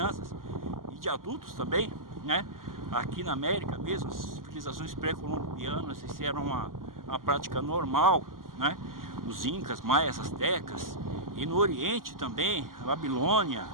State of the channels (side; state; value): left; late; 0.91 ms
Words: e de adultos também, né. Aqui na América mesmo, as civilizações pré-colombianas, isso era uma prática normal, né, os incas, maias, astecas, e no Oriente também, a Babilônia,